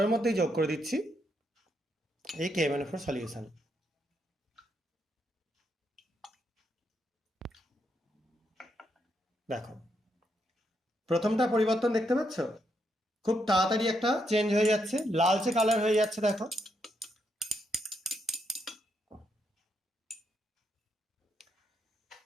মধ্যেই যোগ করে দিচ্ছি এই KMnO4 সলিউশন। দেখো প্রথমটা পরিবর্তন দেখতে পাচ্ছ, খুব তাড়াতাড়ি একটা চেঞ্জ হয়ে যাচ্ছে, লালচে কালার হয়ে যাচ্ছে। দেখো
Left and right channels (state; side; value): normal; both; correlation 0.78